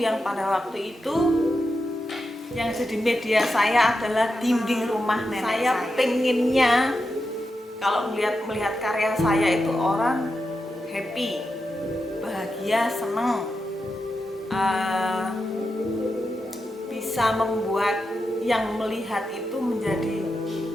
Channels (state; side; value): normal; both; correlation 0.88